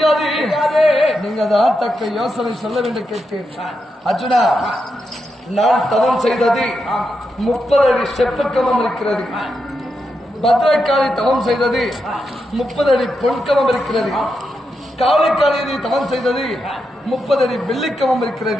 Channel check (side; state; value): both; normal; correlation 0.85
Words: நீங்க தான் தக்க யோசனை சொல்ல வேண்டும் கேட்டேன். அர்ஜுனா, நான் தவம் செய்தது 30 அடி செப்புக்கமம் இருக்கிறது. பத்ரகாளி தவம் செய்தது 30 அடி பொன்கமம் இருக்கிறது. காளிக்காளி தவம் செய்தது 30 அடி வெள்ளிக்கமம்